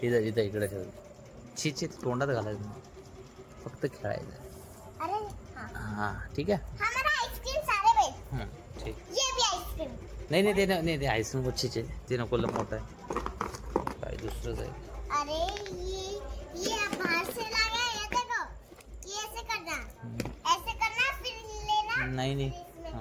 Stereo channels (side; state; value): both; identical; correlation 1.00